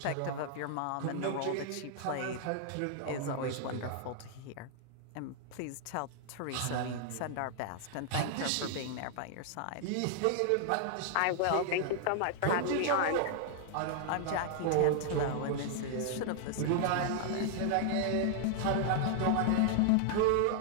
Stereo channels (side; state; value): both; different; correlation -0.01